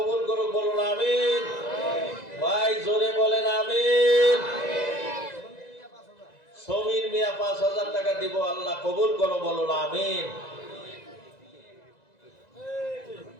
করুক, বলুন আমিন। ভাই জোরে বলেন আমিন। সমীর মিয়া 5,000 টাকা দিব, আল্লাহ কবুল করো, বলুন আমিন।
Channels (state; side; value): late; right; 1.9 ms